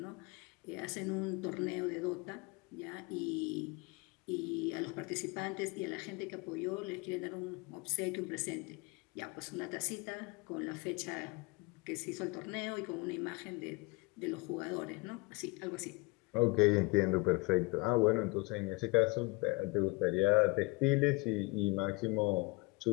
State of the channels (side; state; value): right; quieter; 26.1 dB